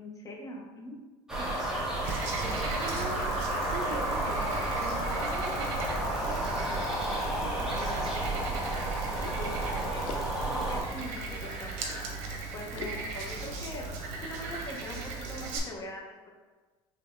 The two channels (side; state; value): both; normal; correlation 0.40